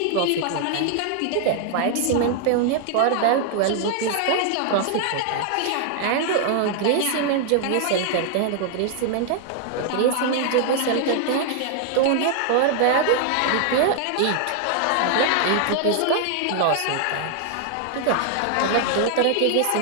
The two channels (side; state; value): both; different; correlation 0.00